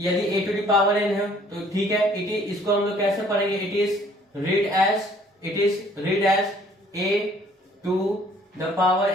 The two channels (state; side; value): normal; both; correlation 0.58